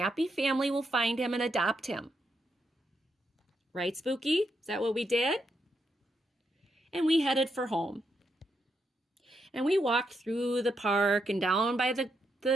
family will find him and adopt him. Right, Spooky? Is that what we did? And we headed for home. And we walked through the park and down by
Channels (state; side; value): normal; both; correlation 0.81